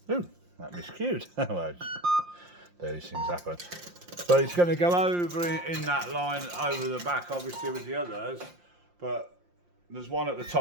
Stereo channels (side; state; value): left; late; 5.7 ms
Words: Ooh, that miscued. Well, these things happen. So it's going to go over in that line over the back, obviously with the others. But there's one at the